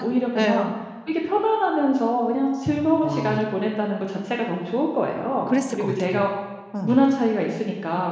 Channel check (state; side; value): identical; both; correlation 1.00